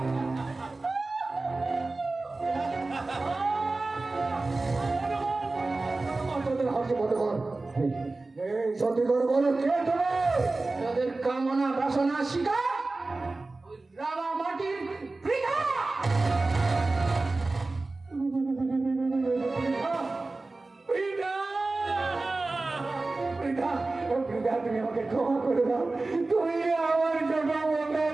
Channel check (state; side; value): quieter; left; 3.3 dB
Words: হাসি মনে কর এই সত্যি করে বলো কে তুমি? তাদের কামনা বাসনা শিকার ওই রাঙা মাটির বৃথা। তুমি আমাকে ক্ষমা করে দাও, তুমি আমার ছোট